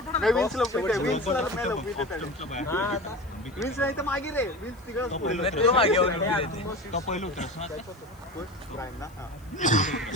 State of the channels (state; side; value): noise; left; hiss, 29 dB below the sound